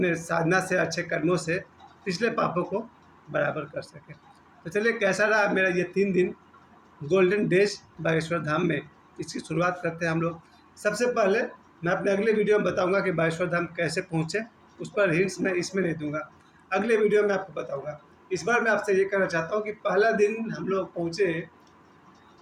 साधना से, अच्छे कर्मों से पिछले पापों को बराबर कर सके। तो चलिए, कैसा रहा मेरा ये 3 दिन गोल्डन डेज बागेश्वर धाम में, इसकी शुरुआत करते हैं हम लोग। सबसे पहले मैं अपने अगले वीडियो में बताऊंगा कि बागेश्वर धाम कैसे पहुँचे। उस पर हिंट्स मैं इसमें नहीं दूंगा, अगले वीडियो में आपको बताऊंगा। इस बार मैं आपसे ये कहना चाहता हूँ कि पहला दिन हम लोग पहुँचे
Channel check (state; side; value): identical; both; correlation 1.00